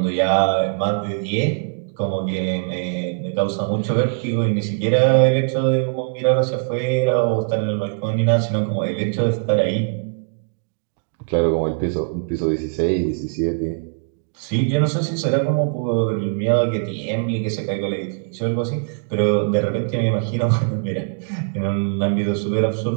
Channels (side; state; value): left; silent; digital silence